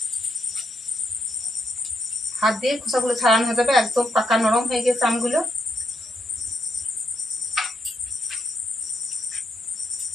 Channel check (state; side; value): normal; both; correlation 0.80